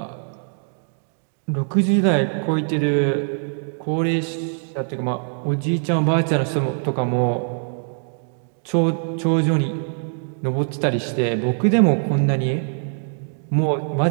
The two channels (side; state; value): left; silent; digital silence